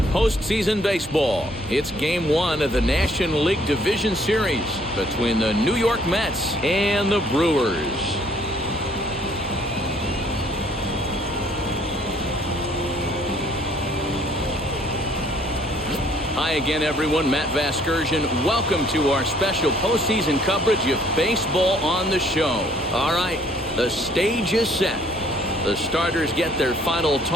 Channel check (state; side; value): normal; both; correlation 0.61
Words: postseason baseball. It's Game 1 of the National League Division Series between the New York Mets and the Brewers. Hi again, everyone. Matt Vasgersian. Welcome to our special postseason coverage of Baseball on the Show. All right, the stage is set. The starters get their final